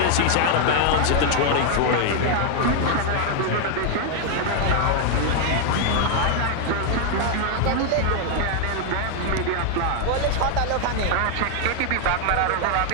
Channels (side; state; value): both; different; correlation 0.00